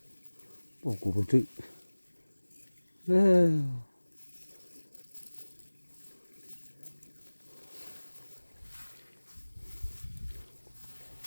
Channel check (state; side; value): inverted; both; correlation -1.00